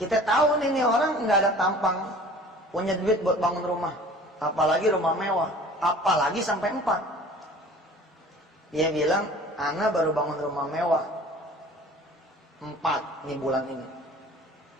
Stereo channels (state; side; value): normal; both; correlation 0.46